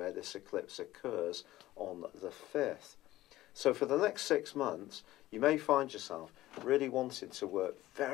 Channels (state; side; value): quieter; right; 15.9 dB